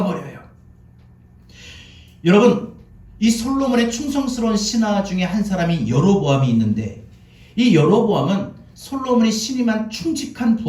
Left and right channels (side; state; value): both; identical; correlation 1.00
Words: 버려요. 여러분 이 솔로몬의 충성스러운 신하 중에 한 사람이 여로보암이 있는데, 이 여로보암은 솔로몬이 신임한 충직한